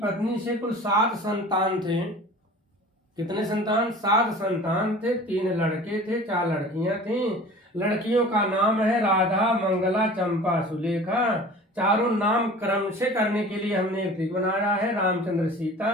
से कुल 7 संतान थे। कितने संतान? 7 संतान थे। 3 लड़के थे, 4 लड़कियां थीं। लड़कियों का नाम है राधा, मंगला, चंपा, सुलेखा। चारों नाम क्रम से करने के लिए हमने एक ट्रिक बनाया है। रामचंद्र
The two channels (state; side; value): normal; both; correlation 0.42